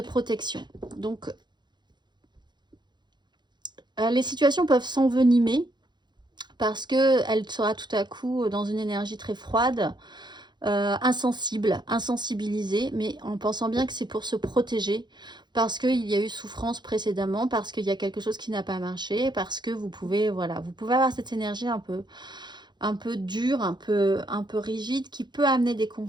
Donc, les situations peuvent s'envenimer parce qu'elle sera tout à coup dans une énergie très froide, insensibilisée, mais en pensant bien que c'est pour se protéger, parce qu'il y a eu souffrance précédemment, parce qu'il y a quelque chose qui n'a pas marché, parce que vous pouvez, voilà, vous pouvez avoir cette énergie un peu dure, un peu rigide, qui peut amener des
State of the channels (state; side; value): late; left; 0.21 ms